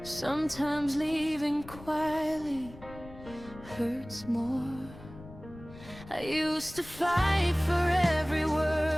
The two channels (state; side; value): noise; left; rumble, 17 dB below the sound